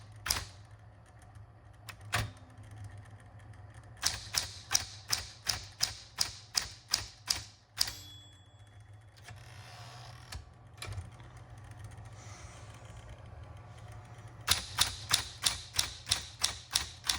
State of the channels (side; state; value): both; identical; correlation 1.00